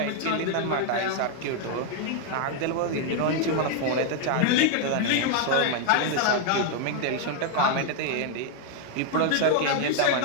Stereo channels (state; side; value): different; both; correlation 0.00